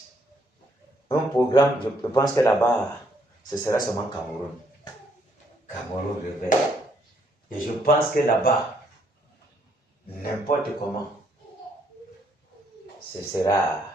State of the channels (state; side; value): normal; both; correlation 0.70